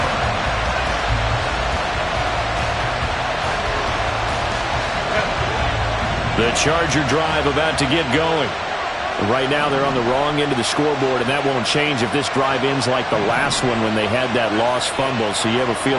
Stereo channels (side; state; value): both; identical; correlation 1.00